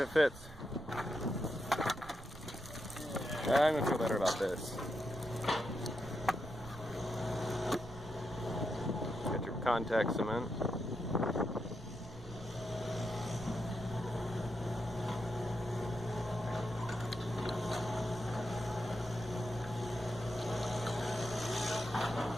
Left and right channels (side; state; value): right; noise; rumble, 15 dB below the sound